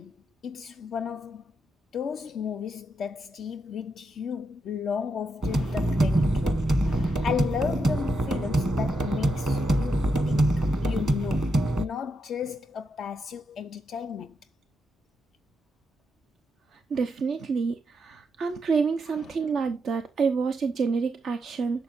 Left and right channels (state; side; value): normal; both; correlation 0.83